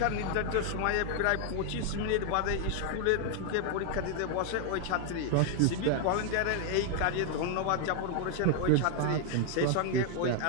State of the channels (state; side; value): different; both; correlation 0.00